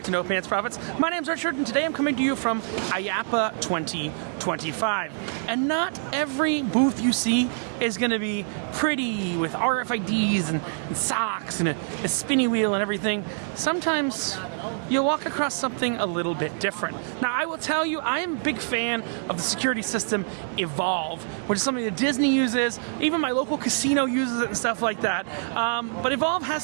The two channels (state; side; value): silent; left; digital silence